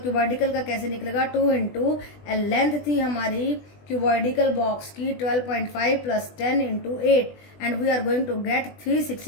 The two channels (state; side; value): late; right; 20 ms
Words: cuboidical का कैसे निकलेगा, 2 इंटू लेंथ थी हमारी क्यूबॉइडिकल बॉक्स की 12.5 plus 10 into 8 and we are going to get